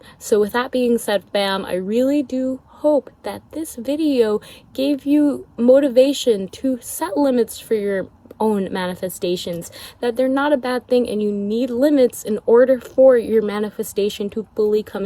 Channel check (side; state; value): both; identical; correlation 1.00